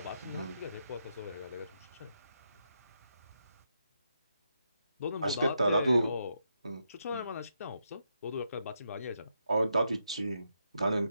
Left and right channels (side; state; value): both; inverted; correlation -0.81